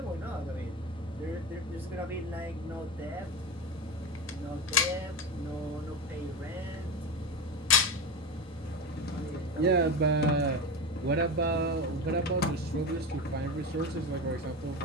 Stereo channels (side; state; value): both; normal; correlation 0.21